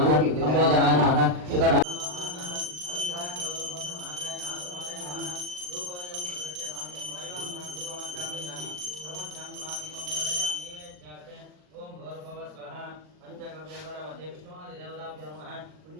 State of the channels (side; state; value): left; late; 39 ms